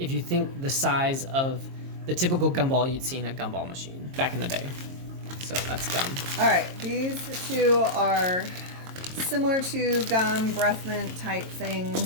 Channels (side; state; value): left; late; 22 ms